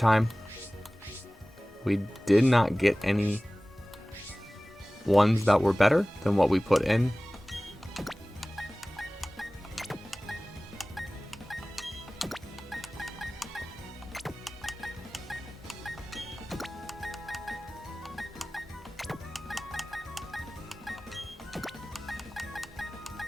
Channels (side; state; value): both; normal; correlation 0.98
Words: we did not get any ones that were better than what we put in.